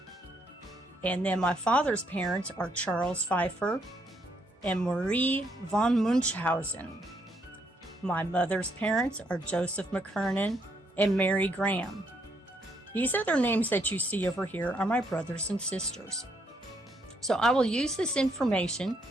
And then my father's parents are Charles Pfeiffer and Marie von Munchausen. My mother's parents are Joseph McKernan and Mary Graham. These other names that you see over here are my brothers and sisters. So I will use this information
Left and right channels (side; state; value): both; normal; correlation 0.74